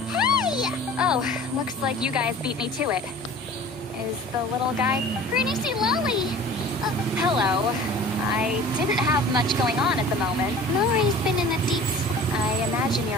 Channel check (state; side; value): normal; both; correlation 0.43